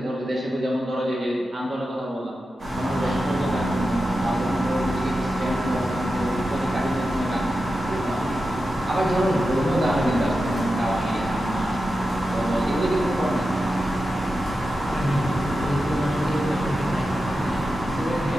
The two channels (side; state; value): both; normal; correlation 0.91